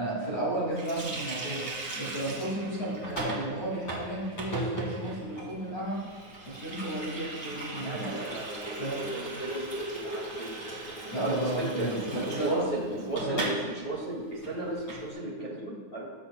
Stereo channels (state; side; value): late; right; 9.1 ms